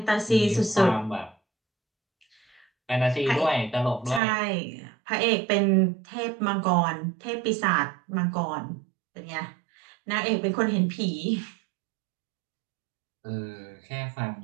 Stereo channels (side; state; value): left; drops out; at 4.2 s